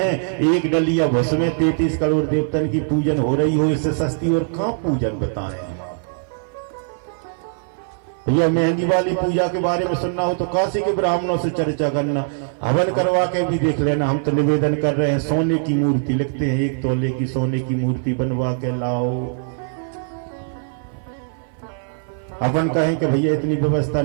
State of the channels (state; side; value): silent; left; 61 dB below the other